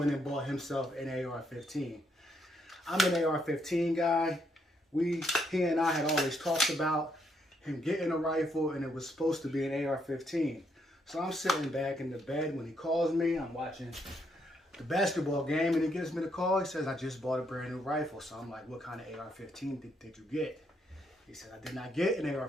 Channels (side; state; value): both; normal; correlation 0.75